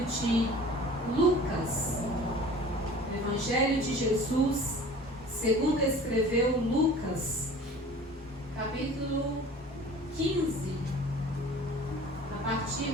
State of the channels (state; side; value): normal; both; correlation 0.44